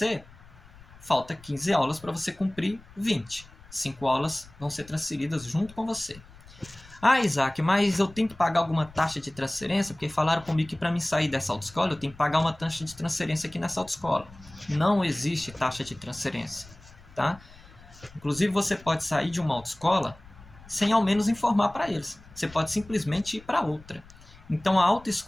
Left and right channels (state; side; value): noise; left; rumble, 22 dB below the sound